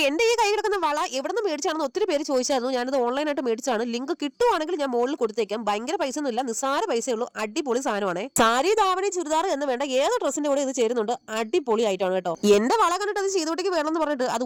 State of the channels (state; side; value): identical; both; correlation 1.00